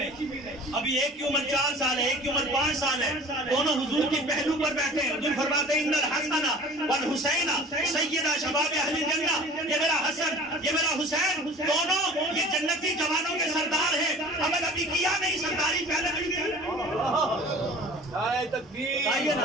ابھی ایک کی عمر 4 سال ہے، ایک کی عمر 5 سال ہے، دونوں حضور کی پہلو پر بیٹھے ہیں۔ حضور فرماتے ہیں ان الحسن والحسین سیدہ شباب اہل جنہ، یہ میرا حسن یہ میرا حسین دونوں یہ جنتی جوانوں کے سردار ہیں، عمل ابھی کیا نہیں، سرداری پہلے مل گئی۔ نعرہ تکبیر،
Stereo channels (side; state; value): both; normal; correlation 0.44